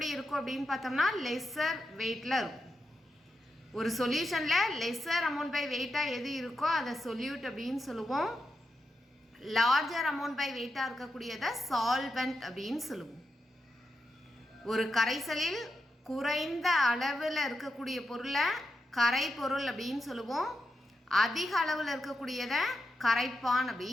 இருக்கும் அப்படின்னு பார்த்தோம்னா லெஸ்ஸர் வெயிட்டில் இருக்கும். ஒரு சொல்யூஷனில் லெஸ்ஸர் அமௌண்ட் பை வெயிட்டாக எது இருக்கோ அதை சொல்யூட் அப்படின்னு சொல்லுவோம். லார்ஜர் அமௌண்ட் பை வெயிட்டாக இருக்கக்கூடியதை சால்வெண்ட் அப்படின்னு சொல்லுவோம். ஒரு கரைசலில் குறைந்த அளவில் இருக்கக்கூடிய பொருளை கரைப்பொருள் அப்படின்னு சொல்லுவோம். அதிக அளவில் இருக்கக்கூடியதை கரைப்பான்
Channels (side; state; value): both; normal; correlation 0.87